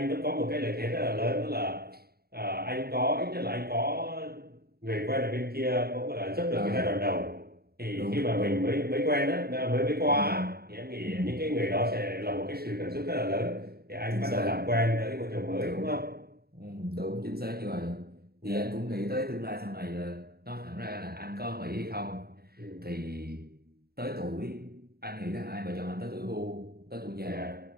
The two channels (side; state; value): left; late; 0.45 ms